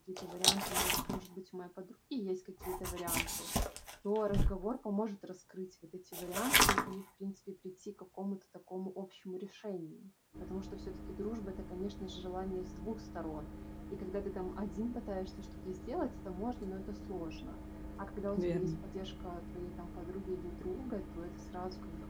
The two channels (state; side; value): identical; both; correlation 1.00